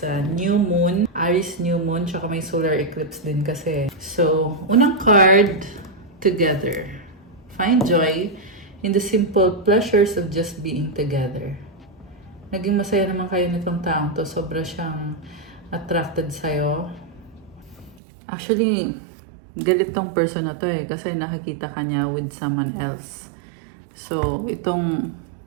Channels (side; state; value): left; drops out; at 18.0 s